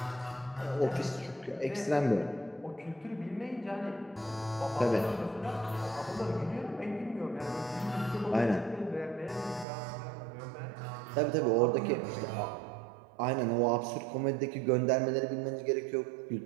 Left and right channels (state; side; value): drops out; left; at 9.7 s